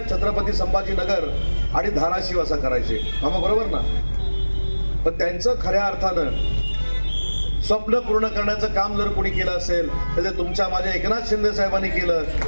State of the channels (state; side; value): inverted; both; correlation -1.00